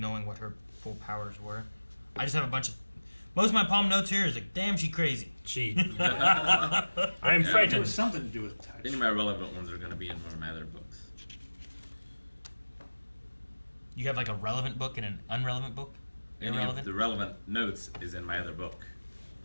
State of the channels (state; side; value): inverted; both; correlation -1.00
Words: what her full powers were. I just have a bunch of. Most of my palm notes here is like, damn, she crazy. She. I am It frightened. was something to do with touch. Any of my relevant ones are going to be in one of my other books. You have like a relevant book and an unrelevant book? Any Irrelevant? of the relevant notes is in my other book